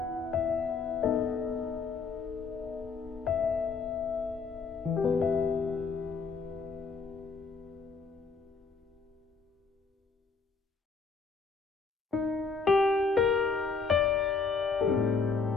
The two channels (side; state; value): right; quieter; 4.9 dB